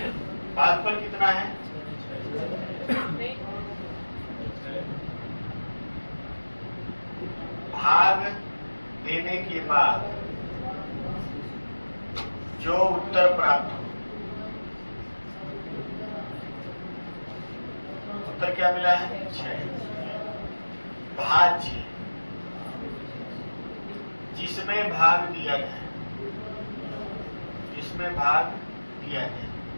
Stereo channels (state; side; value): inverted; both; correlation -1.00